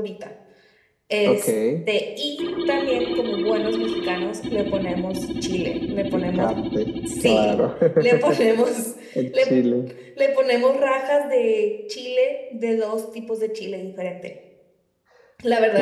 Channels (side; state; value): both; identical; correlation 1.00